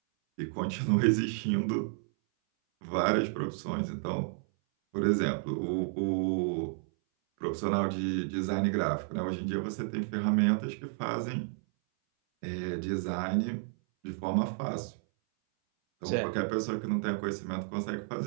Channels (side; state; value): left; silent; 57 dB below the other